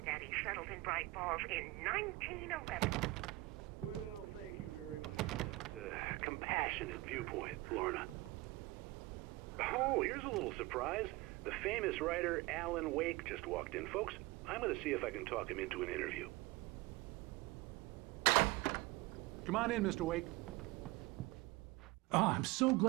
settled in Bright Falls in 1911. Well, thank you very much for that compassionate viewpoint, Lorna. Oh, here's a little surprise. The famous writer Alan Wake just walked in. Folks, I'm going to see if I can talk him into an interview. Come on in, Mr. Wake. Oh, I'm so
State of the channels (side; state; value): left; quieter; 21.2 dB